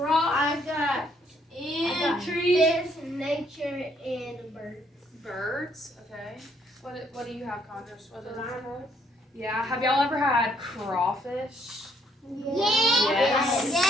I got and trees. fish, nature, and birds. Birds. Okay. What do you have, Congress? What is it? Yeah. Have y'all ever had crawfish? Yes.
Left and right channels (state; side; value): normal; both; correlation 0.68